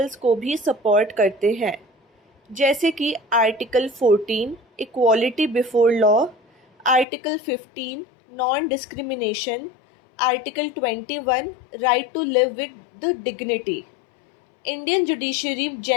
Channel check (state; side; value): drops out; right; at 7.1 s